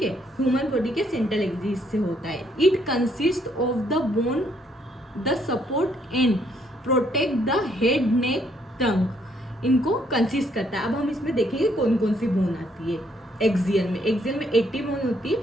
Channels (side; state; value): both; normal; correlation 0.70